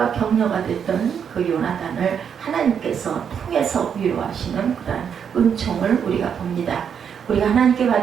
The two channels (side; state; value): left; quieter; 7.6 dB